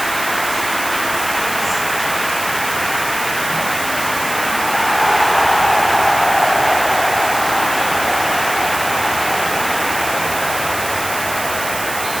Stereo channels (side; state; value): right; noise; hiss, 7 dB below the sound